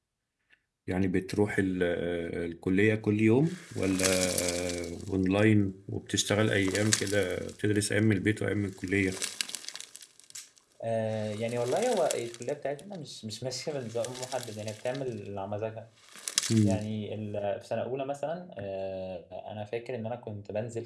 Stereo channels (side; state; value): both; identical; correlation 1.00